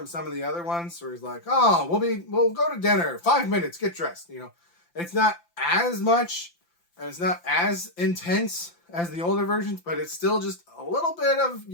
some of the other ones, where he's like, oh, we'll go to dinner, 5 minutes, get dressed, you know. It's not as much, and it's not as intense as the older versions, but it's still just a little bit of,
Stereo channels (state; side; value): late; right; 5.8 ms